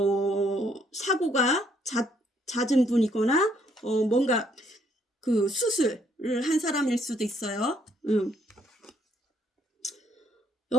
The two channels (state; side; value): normal; both; correlation 0.69